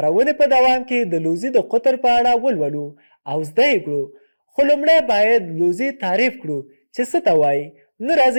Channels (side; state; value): both; inverted; correlation -1.00